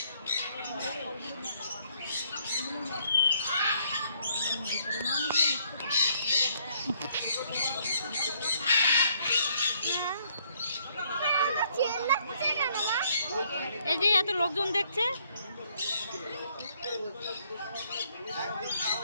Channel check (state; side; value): inverted; both; correlation -0.68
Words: এই যে এত লোকজন দেখছে।